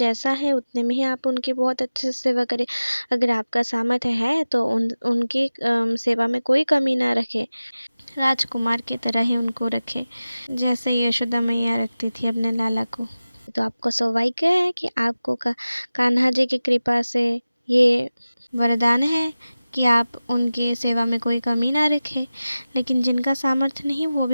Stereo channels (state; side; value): inverted; both; correlation -0.97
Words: है उतने में ही आप उनकी बहुत अच्छे से सेवा करें। अगर आपका सामर्थ्य है तो उनकी सेवा में कोई कमी ना रखें, राजकुमार की तरह ही उनको रखें, जैसे यशोदा मैया रखती थी अपने लाला को। तो आपका सौभाग्य है कि आपको कान्हा जी की कृपा से ये वरदान है कि आप उनकी सेवा में कोई कमी ना रखें। लेकिन जिनका सामर्थ्य नहीं वो